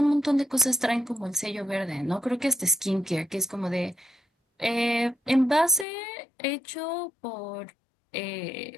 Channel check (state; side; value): drops out; right; at 5.9 s